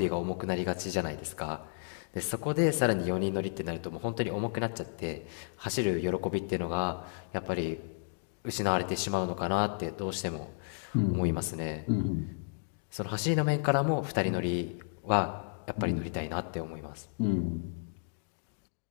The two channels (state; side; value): silent; right; digital silence